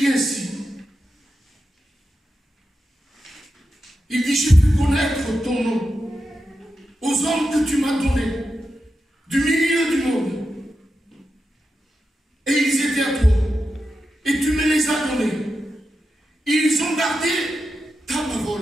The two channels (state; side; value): normal; both; correlation 0.89